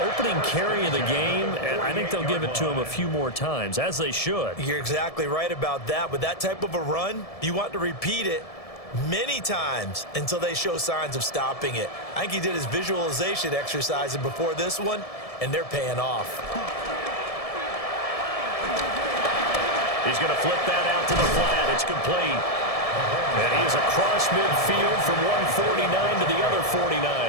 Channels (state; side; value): late; right; 1.7 ms